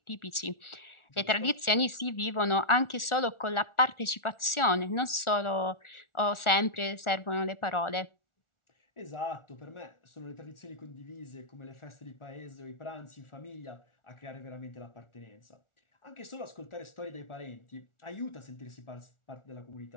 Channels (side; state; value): right; late; 1.4 ms